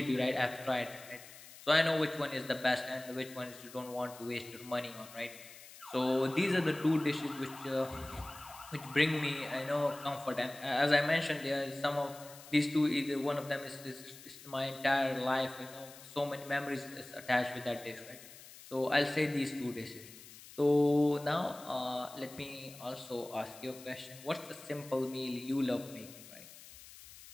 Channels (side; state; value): left; noise; hiss, 18 dB below the sound